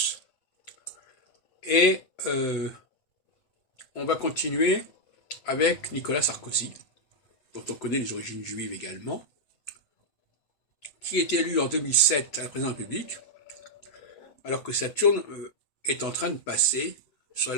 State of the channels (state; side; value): late; right; 7.8 ms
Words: Et on va continuer avec Nicolas Sarkozy, dont on connaît les origines juives également, qui est élu en 2007 à la présidence de la République, alors que Saturne est en train de passer sur